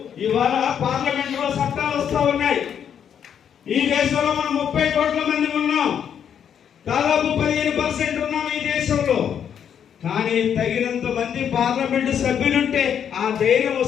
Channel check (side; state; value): right; quieter; 8.5 dB